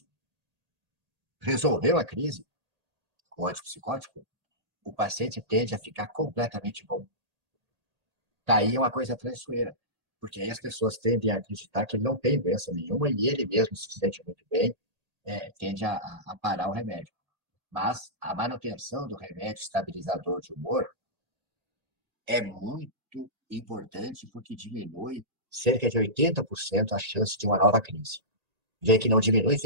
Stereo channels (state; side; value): late; left; 1.8 ms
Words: Resolveu a crise com o antipsicótico, o paciente tende a ficar completamente bom. Daí é uma coisa traiçoeira, porque aí as pessoas tendem a acreditar que ele não tem doença nenhuma e ele mesmo se sente muito bem, tende a parar o remédio. Mas a manutenção do remédio estabilizador de humor é muito importante porque diminui cerca de 80% a chance de uma nova crise. Vê que não diminui